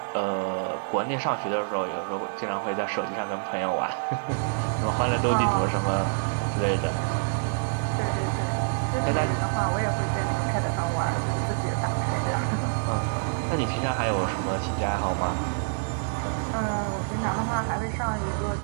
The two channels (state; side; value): silent; left; 60 dB below the other